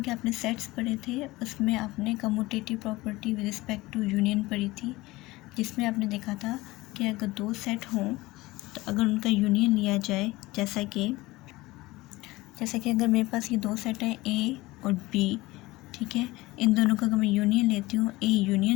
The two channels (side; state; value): right; quieter; 20.1 dB